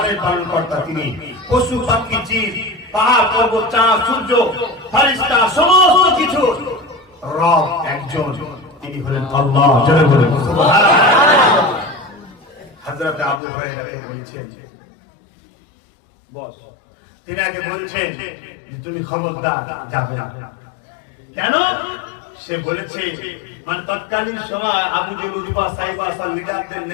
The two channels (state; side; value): drops out; right; at 13.4 s